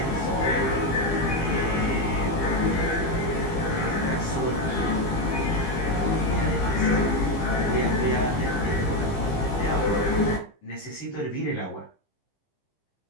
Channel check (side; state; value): right; late; 15 ms